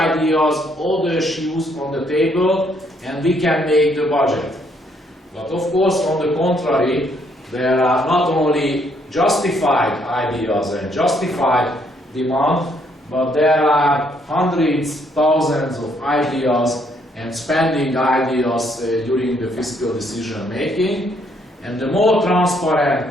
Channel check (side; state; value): both; normal; correlation 0.70